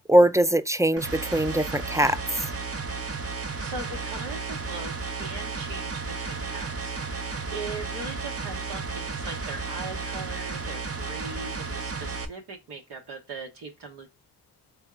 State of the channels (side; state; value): both; normal; correlation 0.61